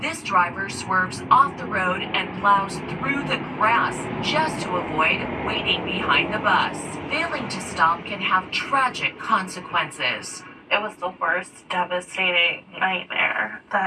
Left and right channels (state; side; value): identical; both; correlation 1.00